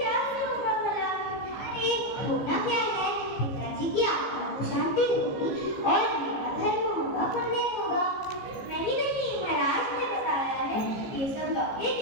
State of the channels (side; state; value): right; late; 15 ms